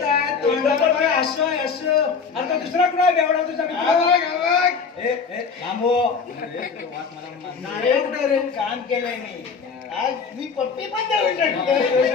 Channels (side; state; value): right; quieter; 5.5 dB